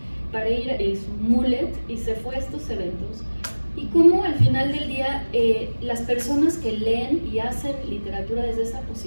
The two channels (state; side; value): inverted; both; correlation -1.00